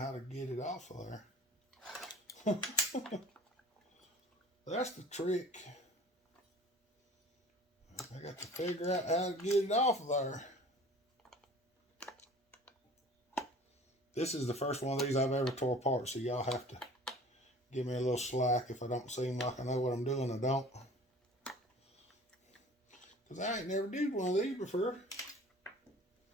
to get it off of there. That's the trick. I got to figure out how to get it off of there. This is the first one of these I've ever tore apart, so y'all have to give me a little slack if I don't seem like I know what I'm doing. I don't. Because I ain't never did one of these before.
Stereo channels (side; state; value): both; normal; correlation 0.45